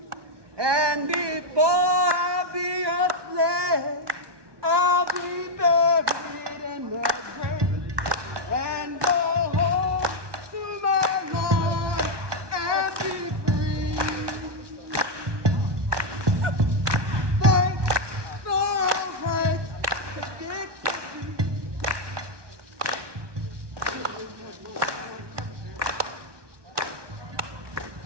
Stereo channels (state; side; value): late; left; 1.2 ms